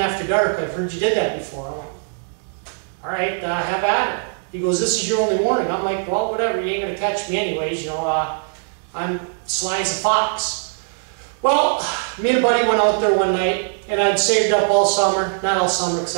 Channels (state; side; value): silent; left; digital silence